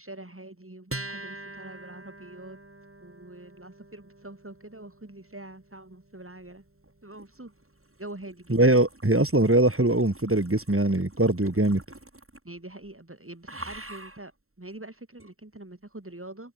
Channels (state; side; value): late; left; 0.63 ms